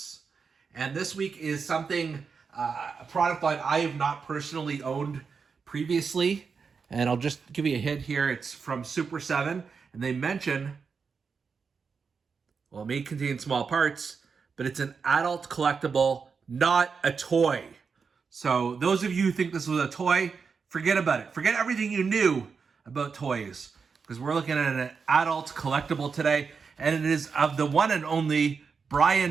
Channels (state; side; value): quieter; left; 5.5 dB